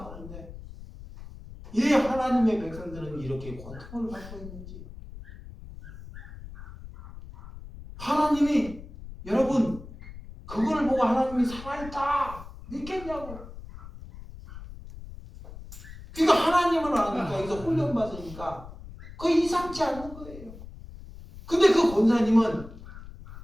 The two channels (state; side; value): noise; left; rumble, 15 dB below the sound